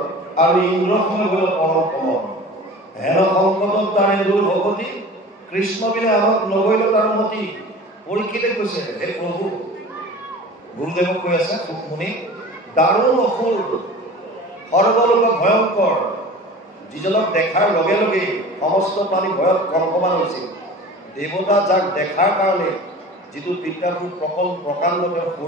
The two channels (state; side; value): normal; both; correlation 0.39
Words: আৰু ইন্দ্ৰসনে গ'ল পৰম সমন হেন সংকটত তাৰে দূৰ ভগতি কৃষ্ণ বিনে আমাক নগৈল তাৰ মতি পৰীক্ষিতে কৈছে হে প্ৰভু গুৰুদেৱক কৈ আছে মুনি দাৰুণ অসুৰ সৰ্বলোক ভয়ংকৰ যিজনক দেখাৰ লগে লগে সমস্ত প্ৰাণী ভয়ত কম্পমান হৈছিল দেৱতা যাক দেখাৰ কাৰণে যিটো বিদ্যাভূ প্ৰকাণ্ড